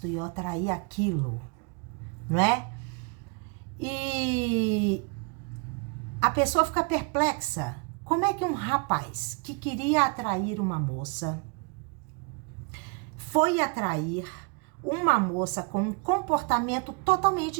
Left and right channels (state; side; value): quieter; left; 31.1 dB